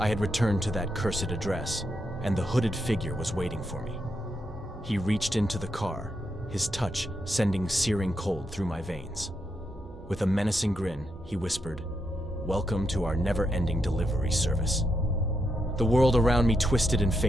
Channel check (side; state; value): both; normal; correlation 0.82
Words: had returned to that cursed address, and the hooded figure was waiting for me. He reached into the car, his touch sending searing cold through my veins. With a menacing grin, he whispered, "Welcome to our never-ending delivery service." The world around me twisted and